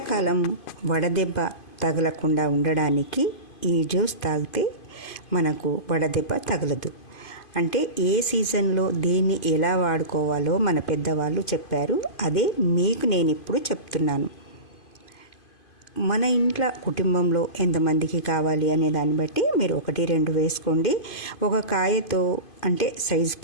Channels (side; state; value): right; late; 2.5 ms